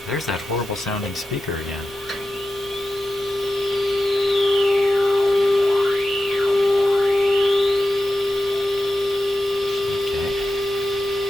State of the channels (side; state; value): both; normal; correlation 0.91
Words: There's that horrible sounding speaker again. Okay.